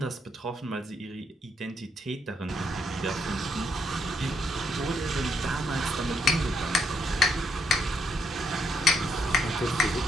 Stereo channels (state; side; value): normal; both; correlation 0.74